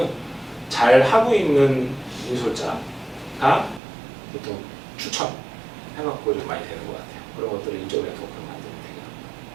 잘 하고 있는 인솔자가 보통 추천해갖고 좀 많이 되는 것 같아요. 그런 것들을 인적 네트워크를 만들면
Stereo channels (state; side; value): drops out; left; at 3.8 s